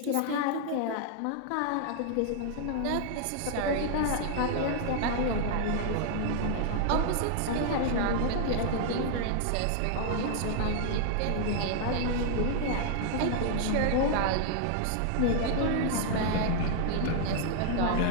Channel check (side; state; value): both; different; correlation 0.00